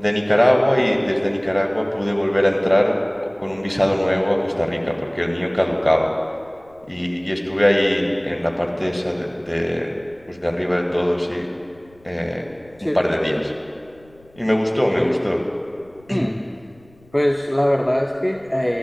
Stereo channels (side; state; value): left; noise; rumble, 28 dB below the sound